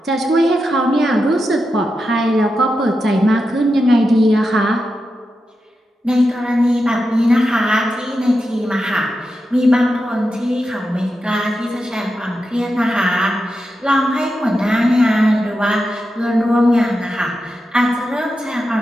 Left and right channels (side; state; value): both; normal; correlation 0.89